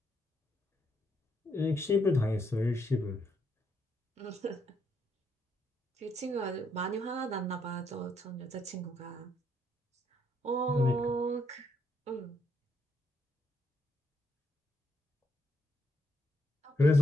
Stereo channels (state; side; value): normal; both; correlation 0.75